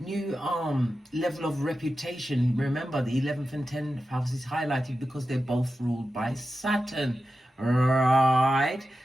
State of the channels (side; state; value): both; normal; correlation 0.91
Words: new level of reputation. Remember, the 11th and 10th house is highlighted because they're both ruled by Saturn, right?